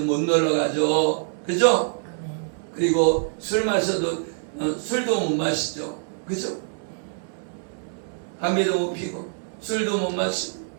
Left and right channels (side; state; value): left; silent; 62 dB below the other